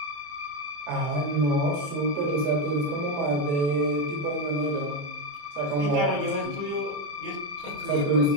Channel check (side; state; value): left; late; 28 ms